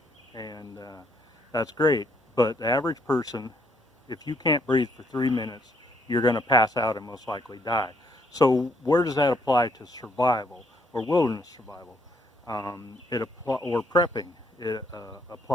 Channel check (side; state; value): both; normal; correlation 0.69